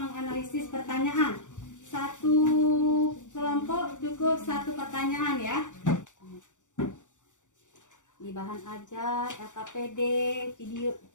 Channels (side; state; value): right; late; 0.86 ms